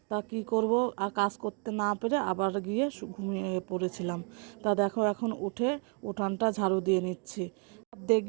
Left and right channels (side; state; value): left; quieter; 35.0 dB